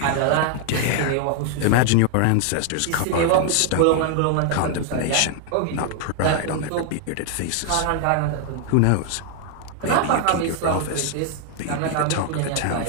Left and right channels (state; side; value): different; both; correlation 0.00